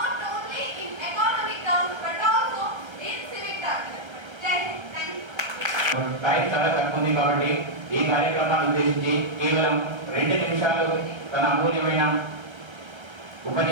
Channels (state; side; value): late; left; 1.3 ms